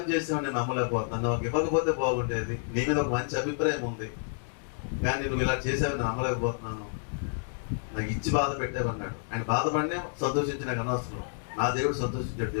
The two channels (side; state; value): right; silent; digital silence